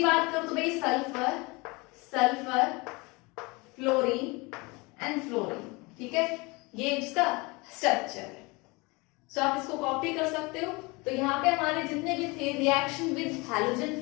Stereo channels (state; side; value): quieter; right; 26.0 dB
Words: बात करूं तो भाई sulphur, sulphur, fluorine and fluorine, ठीक है, ये इसका स्ट्रक्चर है। सो आप इसको कॉपी कर सकते हो। तो यहाँ पे हमारे जितने भी थे रिएक्शन विद हैलोजन